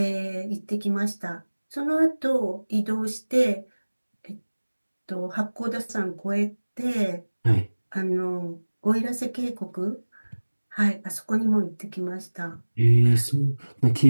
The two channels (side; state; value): both; inverted; correlation -1.00